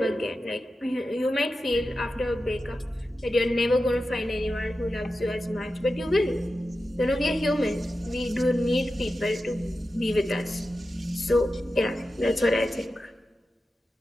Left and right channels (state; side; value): normal; both; correlation 0.92